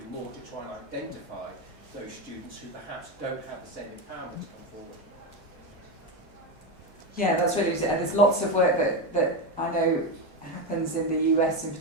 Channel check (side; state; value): both; normal; correlation 0.14